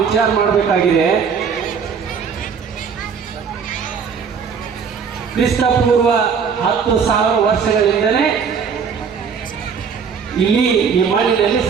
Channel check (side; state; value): left; quieter; 6.4 dB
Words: ವಿಚಾರ ಮಾಡಬೇಕಾಗಿದೆ, ಕ್ರಿಸ್ತಪೂರ್ವ 10,000 ವರ್ಷಗಳಿಂದಲೇ ಇಲ್ಲಿ ಈ ಮಣ್ಣಿನಲ್ಲಿ